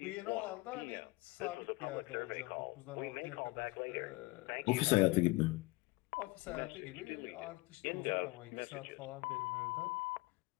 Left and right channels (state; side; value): quieter; right; 23.1 dB